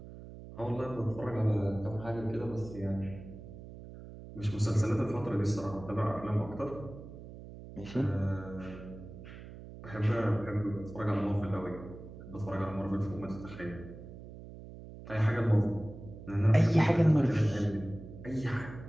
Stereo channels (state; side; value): noise; right; hum, 14 dB below the sound